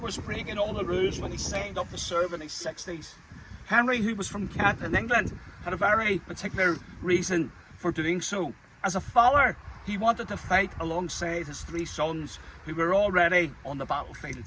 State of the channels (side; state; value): both; identical; correlation 1.00